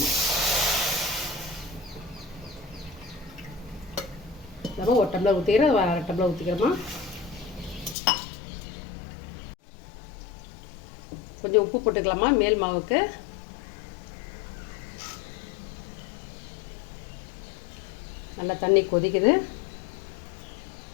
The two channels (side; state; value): right; drops out; at 8.0 s